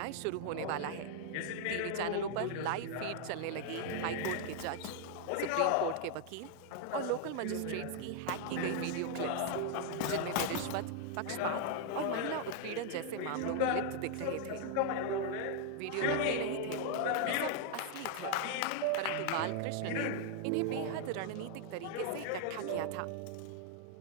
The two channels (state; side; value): different; both; correlation 0.00